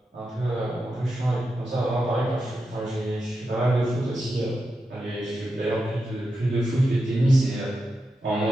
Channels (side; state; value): both; normal; correlation 0.88